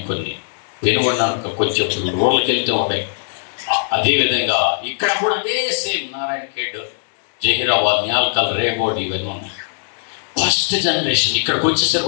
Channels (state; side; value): silent; right; 66 dB below the other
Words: కొన్ని పెనుగొండ కొంచెం రూరల్కి వెళ్తే ఉన్నాయి. అదేవిధంగా ఇక్కడ కూడా అదే సేమ్ నారాయణ ఖేడ్, జహీరాబాద్, న్యాల్కల్, రేగోడ్ ఇవన్నీ ఉన్నాయి. ఫస్ట్ జనరేషన్ ఇక్కడికి వచ్చేసరికి